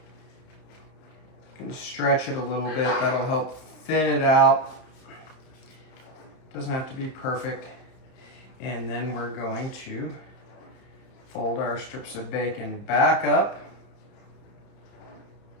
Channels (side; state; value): right; late; 31 ms